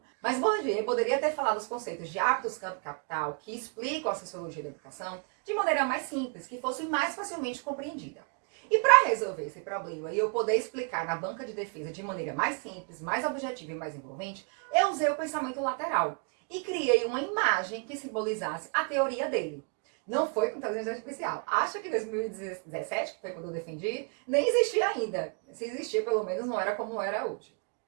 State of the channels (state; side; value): quieter; left; 37.9 dB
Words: Mas Bourdieu poderia ter falado os conceitos de hábitos, campo e capital, que explicam a sociologia da educação, de maneira mais simples, que fosse mais facilmente compreendida. E para resolver esse problema e eu poder explicar na banca de defesa de maneira mais simples, mais objetiva e mais envolvente, eu usei o pensamento lateral e criei uma imagem que simbolizasse a teoria dele. Não foi com inteligência artificial. Acho que em 2017, que foi quando eu defendi, nem existia ainda. Se existia, pelo menos não era como era hoje.